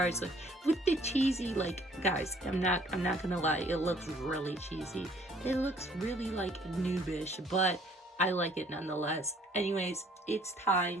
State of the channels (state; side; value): normal; both; correlation 0.59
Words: with the cheesy, like guys, I'm not gonna lie, it looks really cheesy. It looks really like noobish, but I like it nonetheless. Anyways, it's